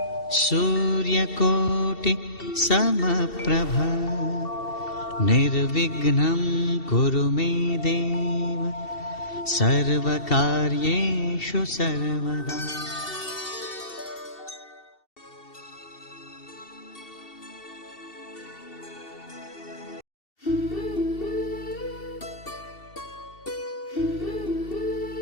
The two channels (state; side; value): late; right; 2.7 ms